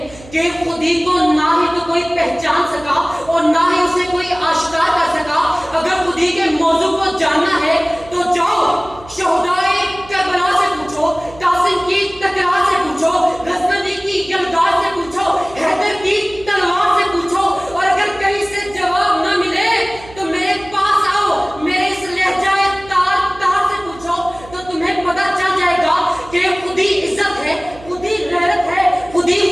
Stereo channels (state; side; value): noise; right; hum, 20 dB below the sound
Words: کہ خودی کو نہ ہی تو کوئی پہچان سکا اور نہ ہی اسے کوئی آشکار کر سکا۔ اگر خودی کے موضوع کو جاننا ہے تو جاؤ شہدائے کربلا سے پوچھو، قاسم کی تکرار سے پوچھو، غزنوی کی یلغار سے پوچھو، حیدر کی تلوار سے پوچھو، اور اگر کہیں سے جواب نہ ملے تو میرے پاس آؤ، میرے اس لہجہ تار تار سے پوچھو، تو تمہیں پتہ چل جائے گا کہ خودی عزت ہے، خودی غیرت ہے، خودی